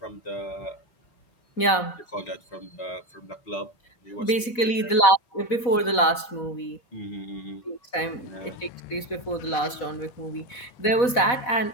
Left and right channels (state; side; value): late; right; 4.1 ms